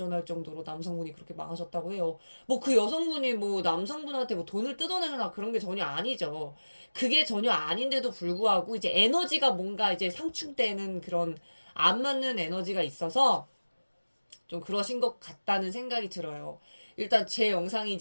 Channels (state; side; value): inverted; both; correlation -1.00